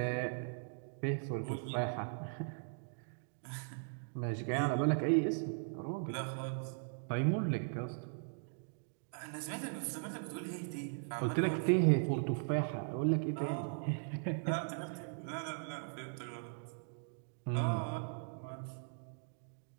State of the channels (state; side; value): silent; left; digital silence